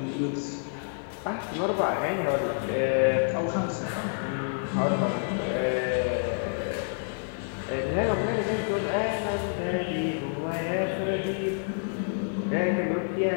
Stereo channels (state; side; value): silent; right; digital silence